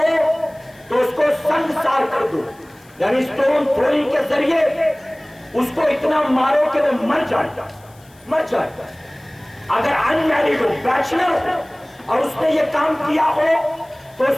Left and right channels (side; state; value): left; noise; hiss, 29 dB below the sound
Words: تو اس کو سنگسار کر دو, یعنی سٹون تھروئنگ کے ذریعے اس کو اتنا مارو کہ وہ مر جائے. اگر ان میریڈ ہو, بیچلر ہو اور اس نے یہ کام کیا ہو تو اس